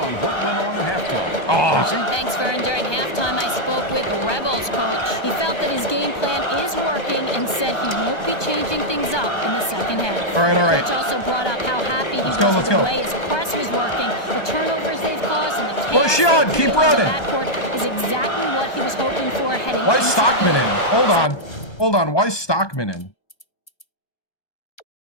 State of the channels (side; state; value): right; late; 1.2 ms